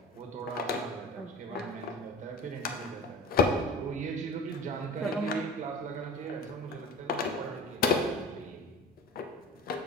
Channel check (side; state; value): both; normal; correlation 0.36